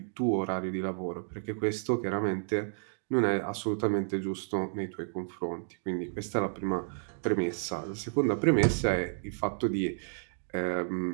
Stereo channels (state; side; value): silent; left; digital silence